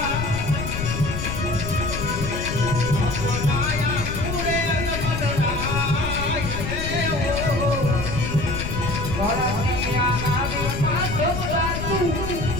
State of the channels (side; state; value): left; noise; rumble, 5 dB below the sound